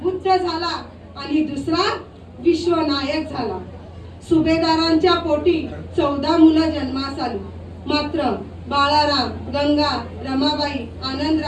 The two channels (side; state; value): both; identical; correlation 1.00